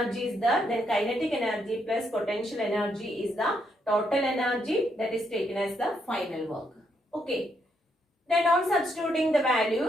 is the, then kinetic energy plus potential energy is the total energy that is taken as the final work. Okay, then on substituting the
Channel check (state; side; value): normal; both; correlation 0.76